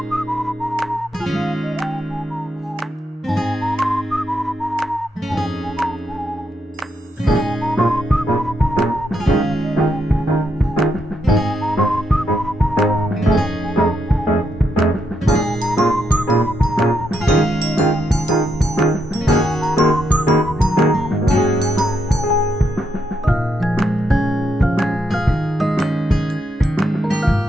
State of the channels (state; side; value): normal; both; correlation 0.79